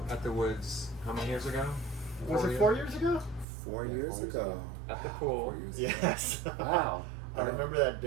at the woods how many years ago? Was it 4 years ago? 4 years ago. At the pool. Yes. Wow. I remember that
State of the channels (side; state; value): left; drops out; at 3.5 s